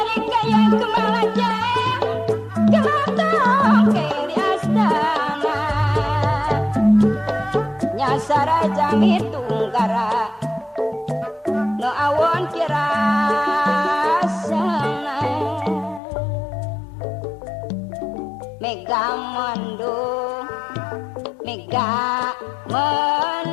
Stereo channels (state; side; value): drops out; right; at 16.0 s